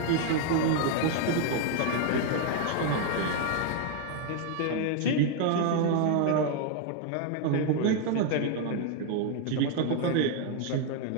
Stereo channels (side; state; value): both; different; correlation 0.00